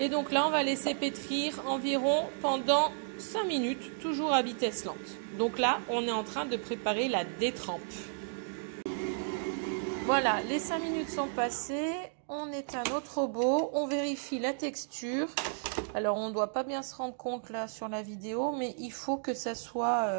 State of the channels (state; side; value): silent; left; digital silence